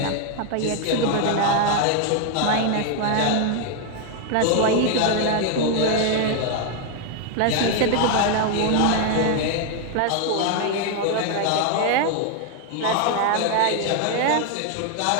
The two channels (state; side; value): different; both; correlation 0.01